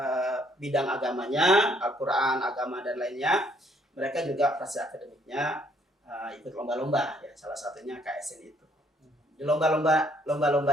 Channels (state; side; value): normal; both; correlation 0.66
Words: bidang agamanya, Al-Quran, agama dan lainnya, mereka juga prestasi akademiknya ikut lomba-lomba ya, salah satunya KSN itu. Di lomba-lomba